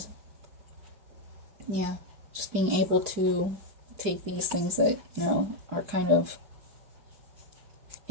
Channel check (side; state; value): left; late; 4.9 ms